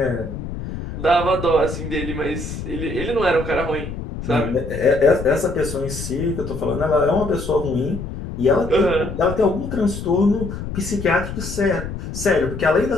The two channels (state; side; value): noise; left; rumble, 8 dB below the sound